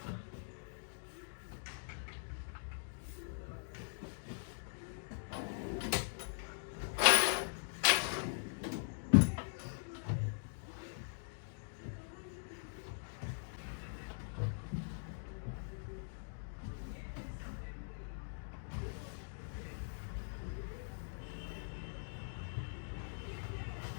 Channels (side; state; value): right; silent; digital silence